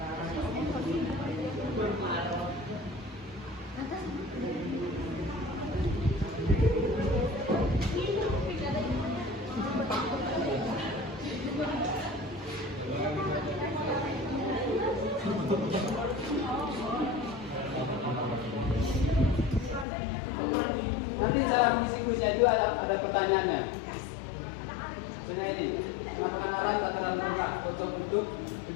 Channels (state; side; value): drops out; right; at 19.9 s